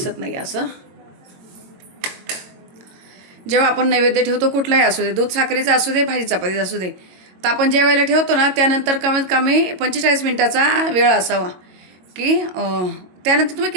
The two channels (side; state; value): left; late; 22 ms